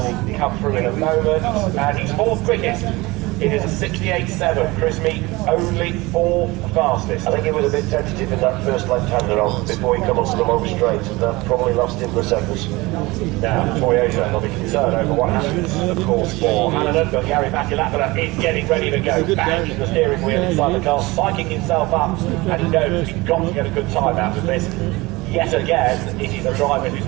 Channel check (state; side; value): quieter; left; 22.1 dB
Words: come through in a moment. And he's 4th quickest. It is a 68.7. Chris Meek only 4th fastest. I think he was a bit tentative in that first left-hander on before he come onto the long straight, and that probably lost him the seconds. Now, Toyota will be concerned over what happens, of course, for Hannon, but Gary Matulapala is getting ready to go back in the steering wheel inside the car, spiking himself up, and he knows he's got to get a good time out of this. Yet again, it is a driver who's